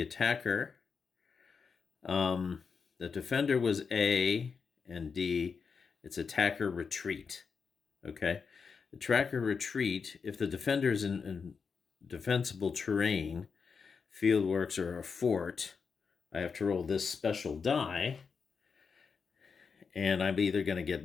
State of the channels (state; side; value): quieter; right; 5.6 dB